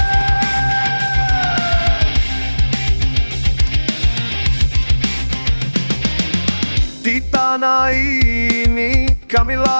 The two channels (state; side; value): inverted; both; correlation -1.00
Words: Di tanah ini kami